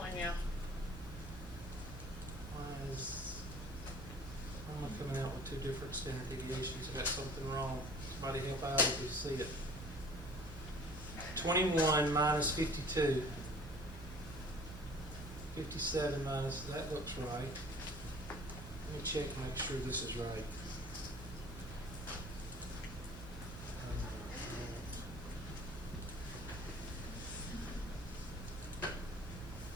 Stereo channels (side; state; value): both; normal; correlation 0.48